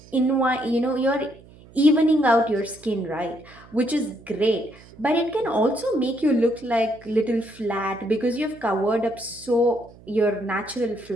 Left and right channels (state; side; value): noise; right; hum, 23 dB below the sound